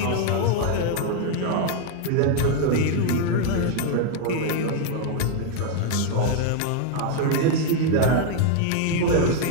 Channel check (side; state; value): both; different; correlation 0.00